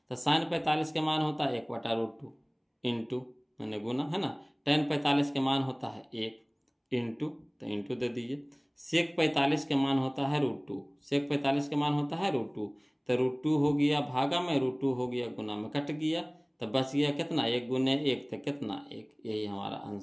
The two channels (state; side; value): identical; both; correlation 1.00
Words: तो साइन 45 के मान होता है 1/√2 इंटू मैंने गुना है ना, टेन 45 के मान होता है 1 इंटू, तो इंटू दे दीजिए। सेक 45 के मान होता है √2, सेक 45 के मान होता है √2। तो √2 हो गया भागा में, √2 हो गया गुना में, कट गया तो बच गया कितना, 1 गुने 1 तो कितना 1। यही हमारा